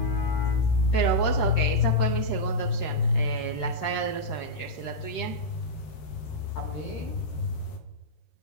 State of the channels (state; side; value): late; right; 13 ms